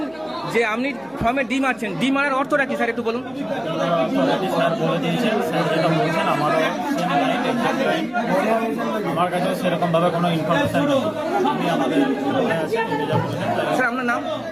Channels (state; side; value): noise; left; hum, 30 dB below the sound